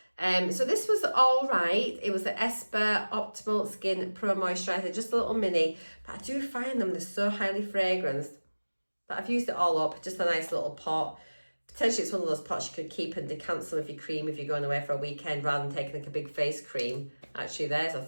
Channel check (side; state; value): both; inverted; correlation -1.00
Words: So this was all right. It was the Esper Optimal Skin Pro Moisturiser, just a little mini. But I do find them, they're so highly fragranced that I've used it all up. Just a nice little pot. Potentially it's one of those pots you could keep and decant some of your cream if you're going away for a weekend rather than taking like a big face cream. Actually, there's a